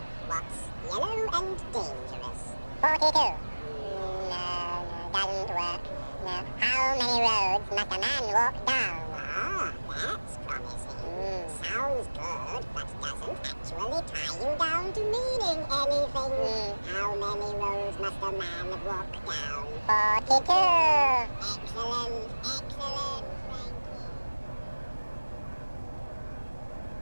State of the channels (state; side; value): inverted; both; correlation -1.00